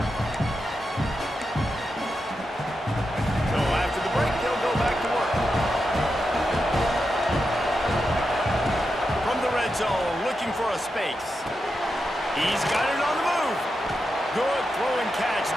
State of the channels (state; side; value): normal; both; correlation 0.87